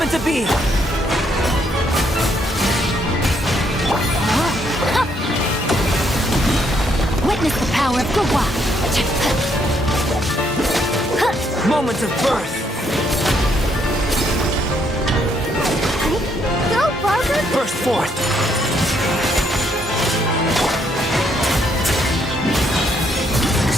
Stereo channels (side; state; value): both; normal; correlation 0.72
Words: into being. Witness the power of Gugwa. Moments of birth. Go, Barker. Burst forth.